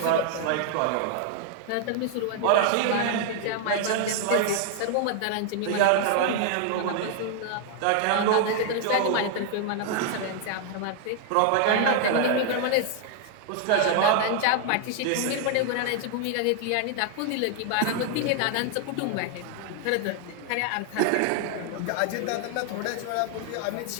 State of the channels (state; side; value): different; both; correlation 0.00